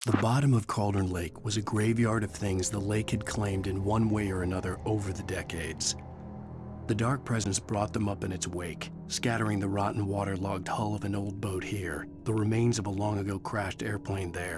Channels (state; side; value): identical; both; correlation 1.00